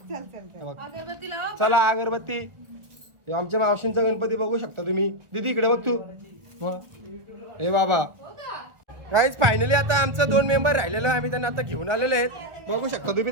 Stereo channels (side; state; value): left; late; 1.5 ms